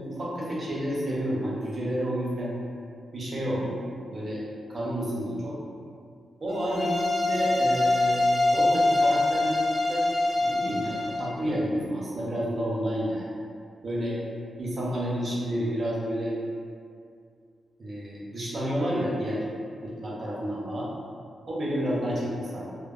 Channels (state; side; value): normal; both; correlation 0.90